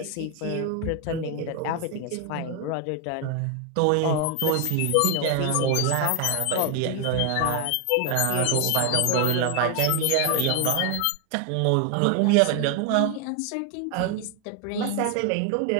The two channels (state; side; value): different; both; correlation 0.01